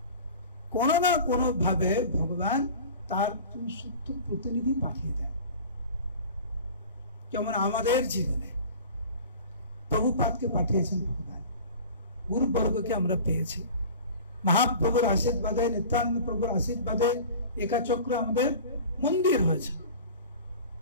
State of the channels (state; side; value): inverted; both; correlation -0.39